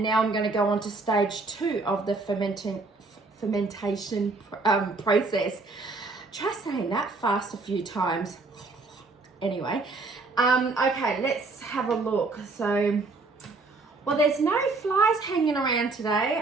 now I'm going to go on to stage 2 of the fermentation process. Try saying that fast a few times. Anyway, okay, let's have a look. So, well, there's no flies hanging around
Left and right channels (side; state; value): left; quieter; 3.6 dB